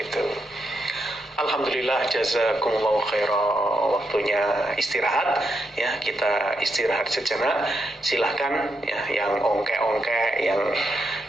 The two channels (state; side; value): normal; both; correlation 0.81